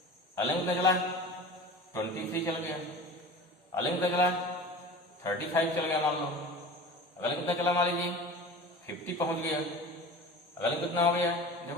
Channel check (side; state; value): both; normal; correlation 0.36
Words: अगले में चला 23 चल गया, अगले में चला 35 चल गया मान लो, अगले में चला मान लीजिए 50 पहुंच गया, अगले कितना हो गया?